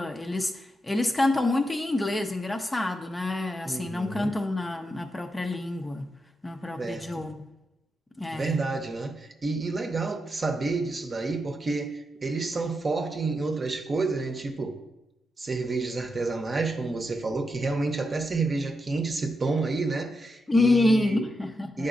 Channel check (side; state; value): both; normal; correlation 0.85